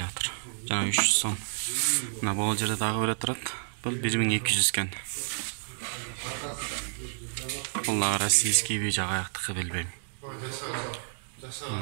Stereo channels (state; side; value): silent; left; digital silence